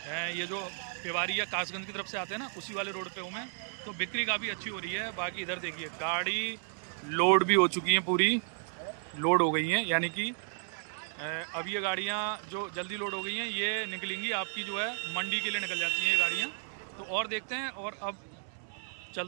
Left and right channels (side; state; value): left; silent; 56 dB below the other